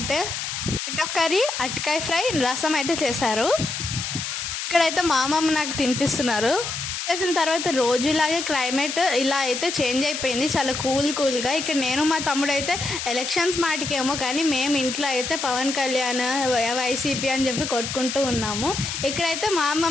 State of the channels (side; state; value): left; noise; hiss, 4 dB below the sound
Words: టొమాటో కర్రీ, అరటికాయ ఫ్రై, రసం అయితే చేశారు. ఇక్కడైతే మా అమ్మమ్మ నాకు తినిపిస్తున్నారు. చేసిన తర్వాత రోజులాగే క్లైమేట్ ఇలా అయితే చేంజ్ అయిపోయింది, చాలా కూల్గా. ఇక్కడ నేను మా తమ్ముడు అయితే ఎలక్షన్స్ మాటికేమో కానీ మేము ఇంట్లో అయితే పవన్ కళ్యాణ్, వైసీపీ అని చెప్పి కొట్టుకుంటూ ఉన్నాము. ఇక్కడైతే మా